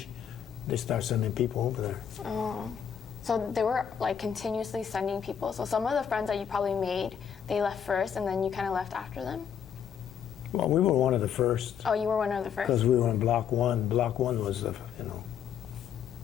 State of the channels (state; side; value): quieter; right; 8.3 dB